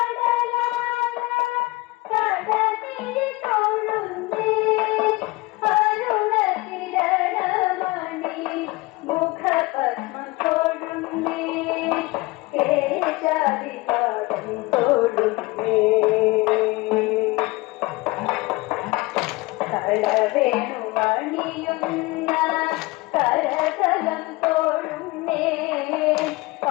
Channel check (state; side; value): quieter; right; 22.3 dB